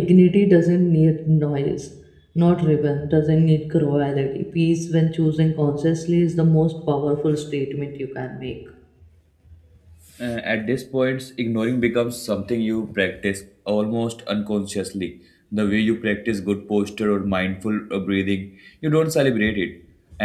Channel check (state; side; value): identical; both; correlation 1.00